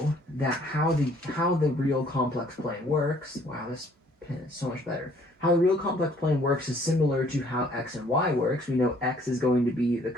that how the real complex plane works, wow, this pen is so much better. How the real complex plane works is similar to how x and y works. We know x is going to be the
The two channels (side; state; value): both; normal; correlation 0.60